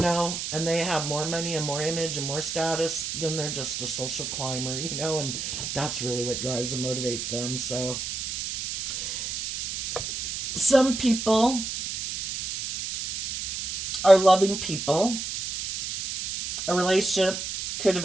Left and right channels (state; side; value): noise; right; hiss, 5 dB below the sound